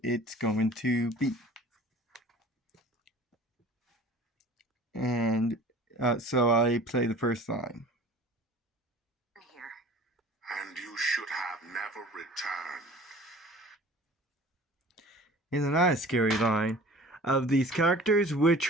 it's going to be. And so I play the first line. Here. And you should have never returned. Isn't that a scary line? Of these characters,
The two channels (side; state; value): both; normal; correlation 0.45